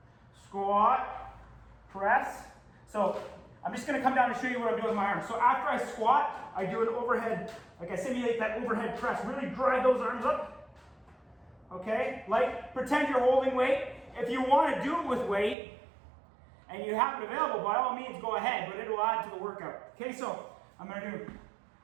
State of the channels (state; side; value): drops out; left; at 15.6 s